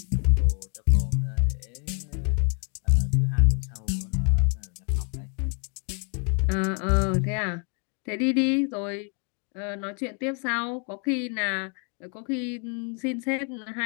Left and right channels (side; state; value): right; quieter; 38.9 dB